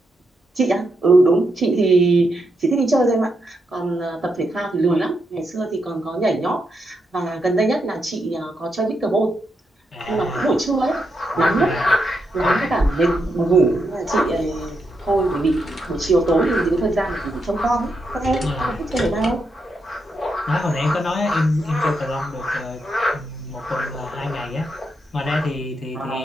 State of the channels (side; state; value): both; normal; correlation 0.82